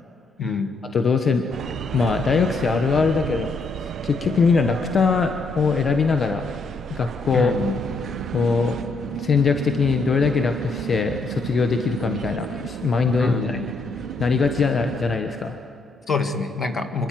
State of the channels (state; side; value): quieter; right; 3.5 dB